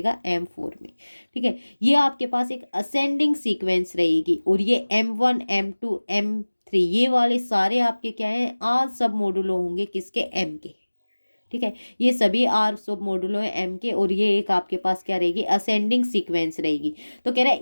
M4 में, ठीक है। ये आपके पास एक असेंडिंग सीक्वेंस रहेगी और ये M1 M2 M3 ये वाले सारे आपके क्या हैं? आर सब मॉडुलो होंगे किसके? एम के, ठीक है। ये सभी आर सब मॉडुलो है एम के। और ये एक आपके पास क्या रहेगी? असेंडिंग सीक्वेंस रहेगी। तो कह रहा है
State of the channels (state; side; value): inverted; both; correlation -1.00